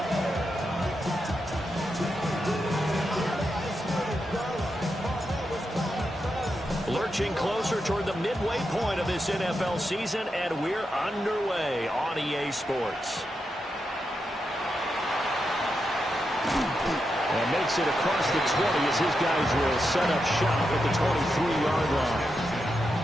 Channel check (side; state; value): both; normal; correlation 0.86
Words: Lurching closer toward the midway point of this NFL season, and we're underway on EA Sports. And makes it across the 20 as his guys will set up shop at the 23-yard line.